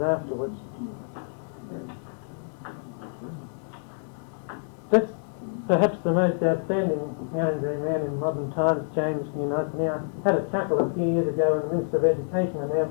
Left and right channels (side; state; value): right; silent; digital silence